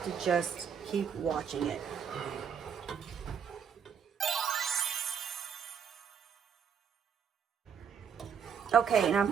to just keep watching it. Okay, and I'm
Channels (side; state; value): left; quieter; 7.5 dB